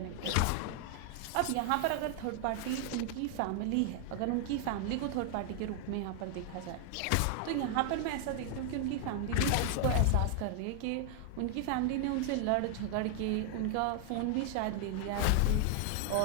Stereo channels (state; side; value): different; both; correlation 0.00